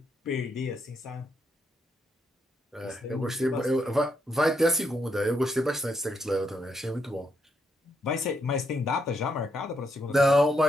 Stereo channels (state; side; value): normal; both; correlation 0.77